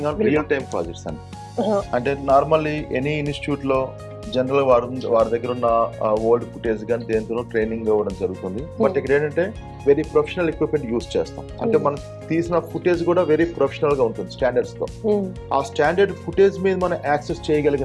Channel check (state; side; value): identical; both; correlation 1.00